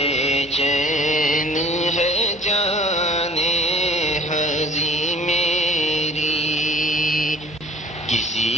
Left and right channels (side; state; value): right; noise; hum, 26 dB below the sound